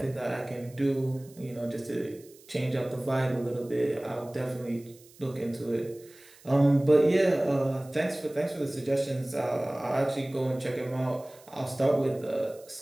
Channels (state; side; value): noise; right; hiss, 25 dB below the sound